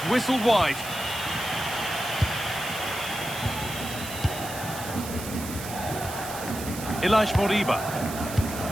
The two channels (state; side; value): noise; right; hiss, 10 dB below the sound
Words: whistled wide. Elias Moriba.